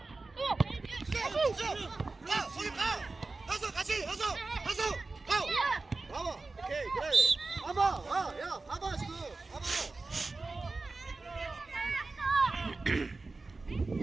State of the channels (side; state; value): left; quieter; 3.6 dB